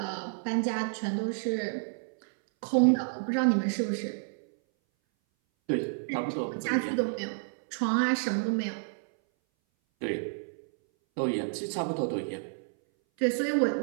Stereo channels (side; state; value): left; silent; 58 dB below the other